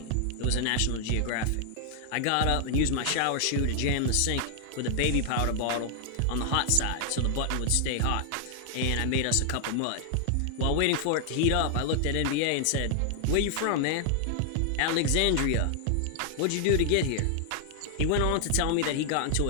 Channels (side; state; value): both; different; correlation 0.00